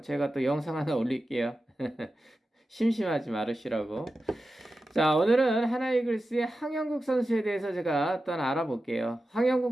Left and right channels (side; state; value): both; normal; correlation 0.93